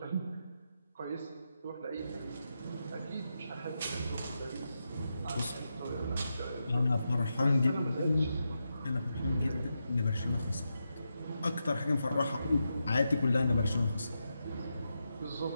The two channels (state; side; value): inverted; both; correlation -0.87